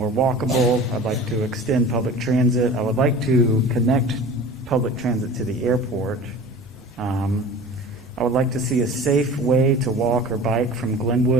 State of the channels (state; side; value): normal; both; correlation 0.39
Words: walkable. I'd like to extend public transit. I would like to connect public transit to the airport. I would like to see a safe way to walk or bike from